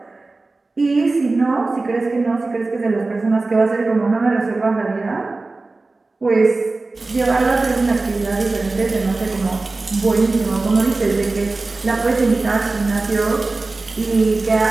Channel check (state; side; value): quieter; left; 3.4 dB